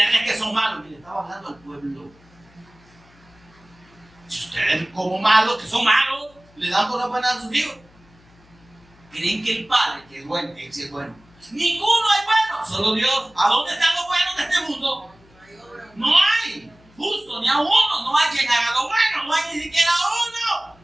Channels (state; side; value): noise; left; hum, 28 dB below the sound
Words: que son malos, y le estaba hablando al pueblo. Si ustedes como malos, que son malos, le dan por la buena a sus hijos, creen que el Padre, que es bueno, que sí es bueno. Ninguno es bueno, solo Dios. ¿A dónde están los buenos de este mundo? No hay, justo, ni a uno. No hay quien haga lo bueno, no hay ni siquiera uno.